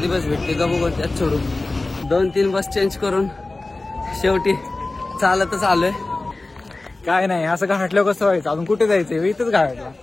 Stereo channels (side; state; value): right; quieter; 3.1 dB